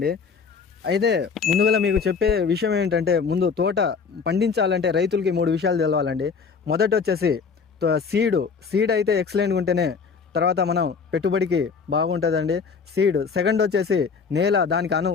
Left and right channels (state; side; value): quieter; right; 5.5 dB